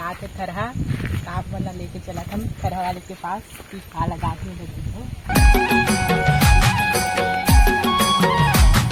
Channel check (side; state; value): both; identical; correlation 1.00